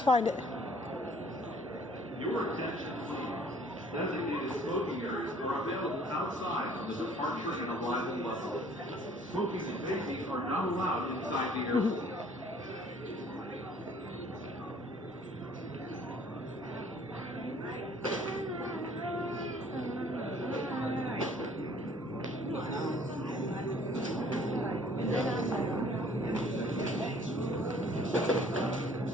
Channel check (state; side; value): normal; both; correlation 0.56